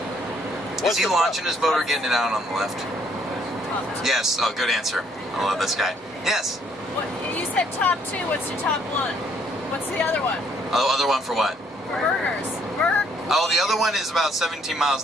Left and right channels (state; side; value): normal; both; correlation 0.67